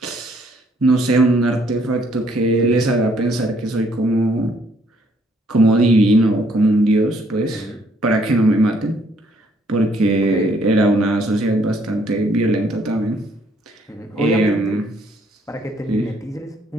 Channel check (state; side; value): normal; both; correlation 0.66